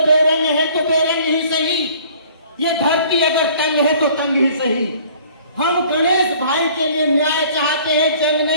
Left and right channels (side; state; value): both; inverted; correlation -0.53